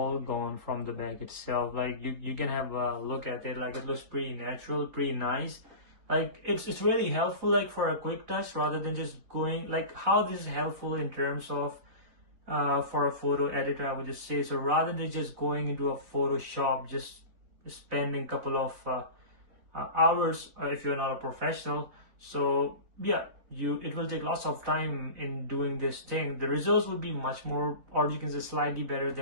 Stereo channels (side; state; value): left; late; 4.2 ms